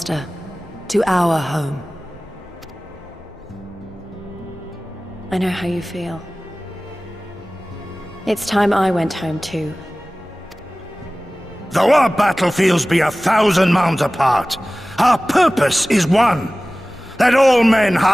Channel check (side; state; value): both; normal; correlation 0.98